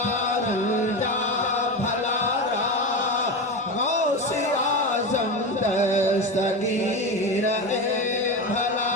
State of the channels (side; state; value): both; normal; correlation 0.20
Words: रंजा भलारा गौसे आजम दस्तगीर ए भला